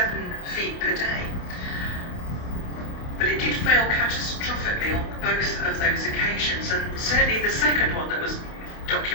feet per day. But it did fail catastrophically on both of those occasions, and certainly the second one that was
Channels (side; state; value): right; late; 28 ms